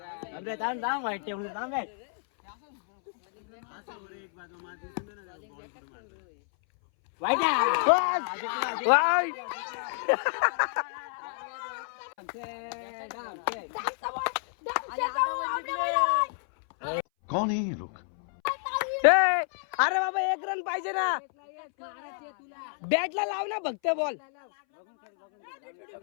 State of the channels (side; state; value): right; silent; 58 dB below the other